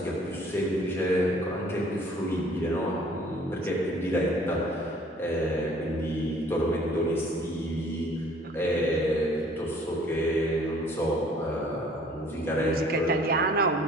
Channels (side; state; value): both; normal; correlation 0.55